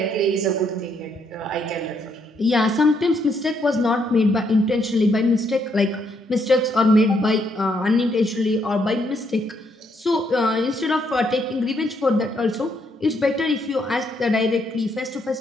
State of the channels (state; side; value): normal; both; correlation 0.74